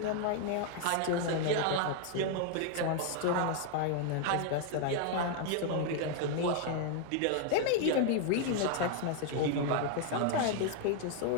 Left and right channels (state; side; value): different; both; correlation 0.00